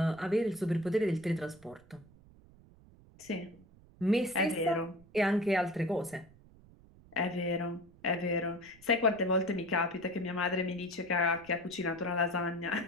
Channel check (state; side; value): noise; right; rumble, 24 dB below the sound